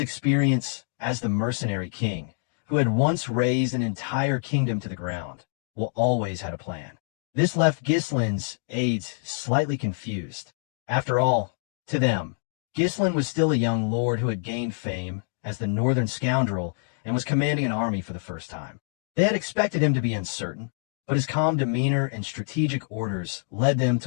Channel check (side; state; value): right; silent; digital silence